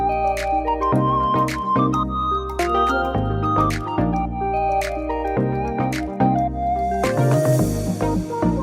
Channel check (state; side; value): identical; both; correlation 1.00